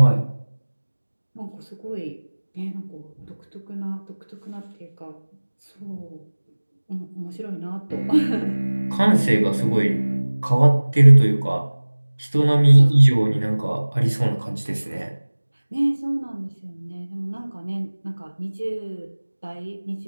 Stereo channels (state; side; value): inverted; both; correlation -1.00